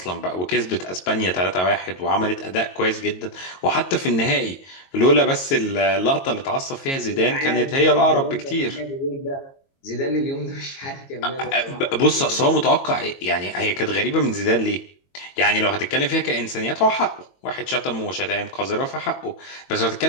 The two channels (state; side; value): late; right; 22 ms